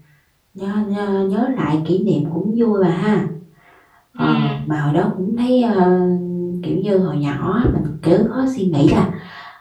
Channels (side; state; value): both; identical; correlation 1.00